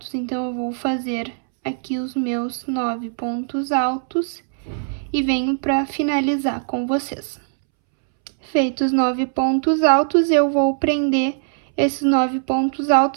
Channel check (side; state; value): left; silent; 65 dB below the other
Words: Então, eu vou fazer aqui os meus 9 pontos altos e venho para finalizar com vocês. Feitos os 9 pontos altos, eu vou prender esses 9 pontos